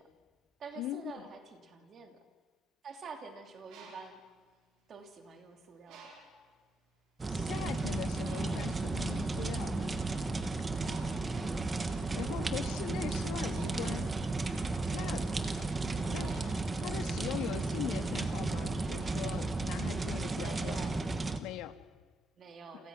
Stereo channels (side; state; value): both; normal; correlation 0.81